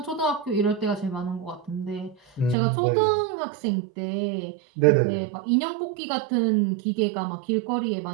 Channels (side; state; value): left; drops out; at 2.6 s